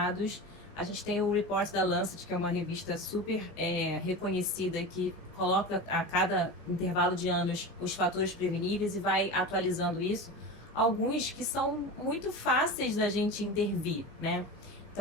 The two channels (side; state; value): both; normal; correlation 0.28